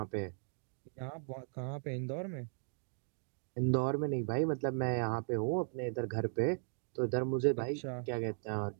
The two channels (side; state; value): left; silent; digital silence